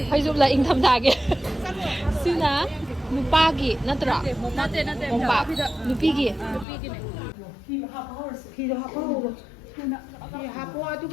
ꯐꯩꯖꯨꯞꯂ ꯏꯪꯊꯝꯊꯥꯒꯤ ꯁꯤꯅ ꯅꯨꯄꯥꯒꯤ ꯅꯠꯇ꯭ꯔꯣ ꯅꯠꯇꯦ ꯃꯣꯝꯄꯥꯛ ꯅꯨꯄꯤꯒꯤ ꯐꯤꯗꯣ ꯍꯥꯞꯄꯍꯧꯔꯣ ꯐꯤ ꯍꯥꯞꯄꯣ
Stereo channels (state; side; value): drops out; right; at 6.7 s